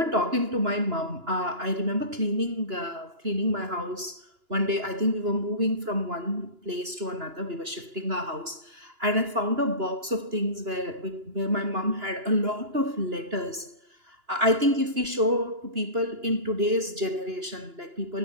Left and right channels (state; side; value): late; left; 2.9 ms